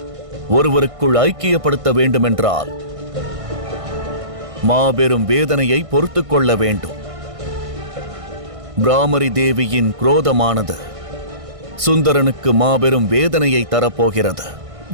ஒருவருக்குள் ஐக்கியப்படுத்த வேண்டுமென்றால் மாபெரும் வேதனையை பொறுத்துக் கொள்ள வேண்டும். பிராமரி தேவியின் குரோதமானது சுந்தரனுக்கு மாபெரும் வேதனையை தரப்போகிறது.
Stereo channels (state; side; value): late; left; 1.6 ms